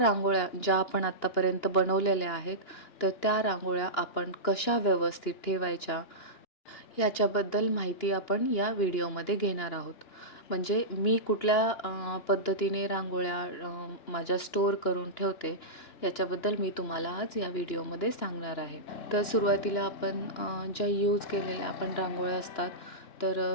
ज्या आपण आत्तापर्यंत बनवलेल्या आहेत, तर त्या रांगोळ्या आपण कशा व्यवस्थित ठेवायच्या याच्याबद्दल माहिती आपण या व्हिडिओमध्ये घेणार आहोत. म्हणजे मी कुठल्या पद्धतीने रांगोळ्या माझ्या स्टोअर करून ठेवते याच्याबद्दल मी तुम्हाला आज या व्हिडिओमध्ये सांगणार आहे. तर सुरुवातीला आपण ज्या यूज केलेल्या आपण रांगोळ्या असतात,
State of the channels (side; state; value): right; late; 2.9 ms